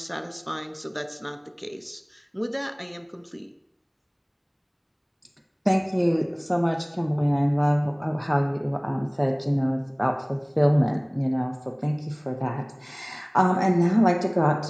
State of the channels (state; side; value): identical; both; correlation 1.00